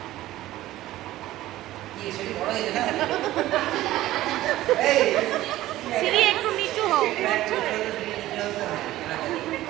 কি সেটি বড় হয়েছে না এই সিঁড়ি একটু নিচু হও।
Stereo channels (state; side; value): quieter; left; 15.4 dB